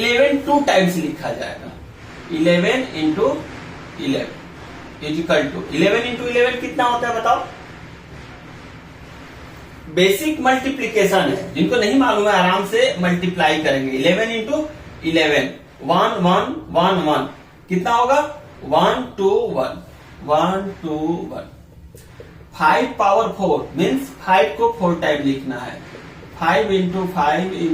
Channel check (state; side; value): identical; both; correlation 1.00